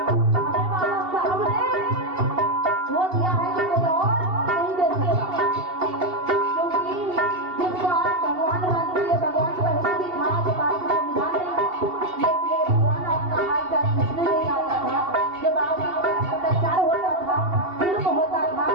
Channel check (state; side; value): late; left; 2.7 ms